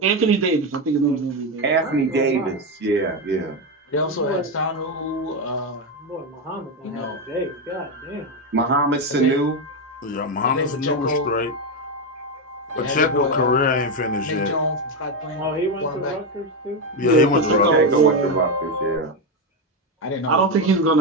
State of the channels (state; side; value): normal; both; correlation 0.10